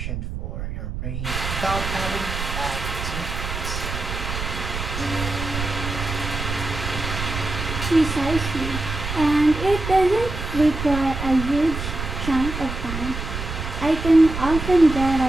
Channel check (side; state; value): right; noise; rumble, 6 dB below the sound